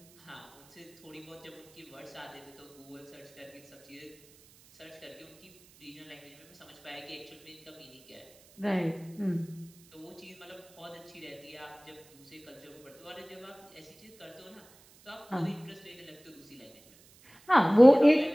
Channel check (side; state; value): right; noise; hiss, 26 dB below the sound